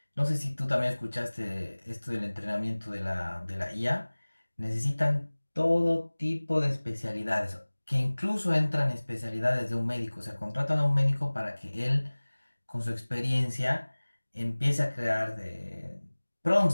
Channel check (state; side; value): inverted; both; correlation -1.00